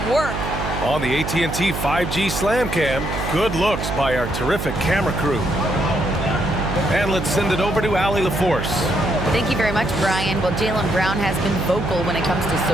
work. On the AT&T 5G Slam Cam, good looks by our terrific camera crew. And let's send it over to Allie LaForce. Thank you very much, Brian. Well, Jaylen Brown has been vocal when it comes to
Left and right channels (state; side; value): noise; right; hum, 5 dB below the sound